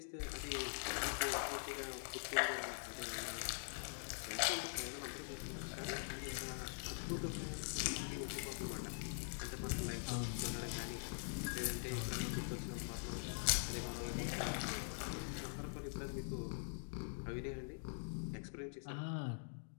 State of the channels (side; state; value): right; silent; digital silence